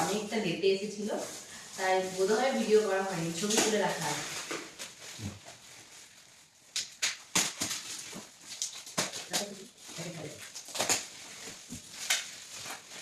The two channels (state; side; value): identical; both; correlation 1.00